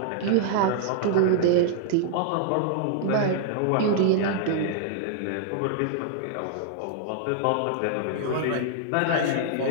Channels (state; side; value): different; both; correlation -0.01